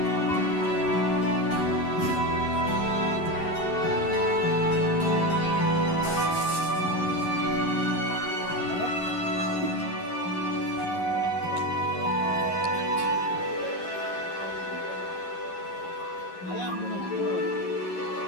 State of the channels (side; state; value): right; late; 11 ms